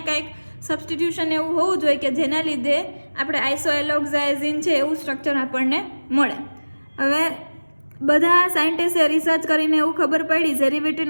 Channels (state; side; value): inverted; both; correlation -1.00